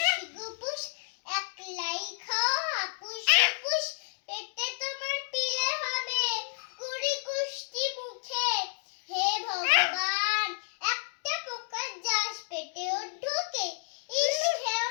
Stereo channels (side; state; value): right; silent; 57 dB below the other